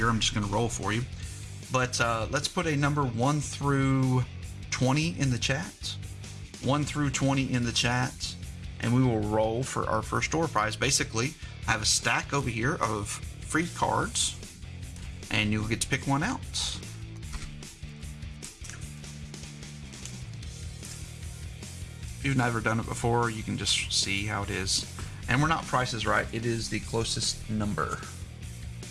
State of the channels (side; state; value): both; identical; correlation 1.00